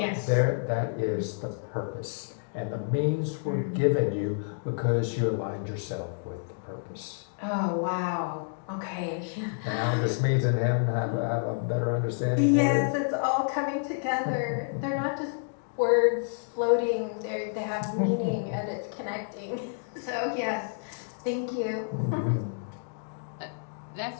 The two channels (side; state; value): right; silent; digital silence